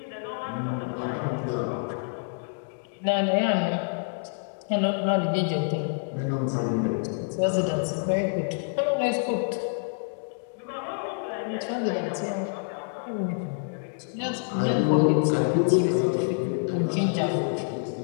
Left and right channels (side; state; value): right; silent; digital silence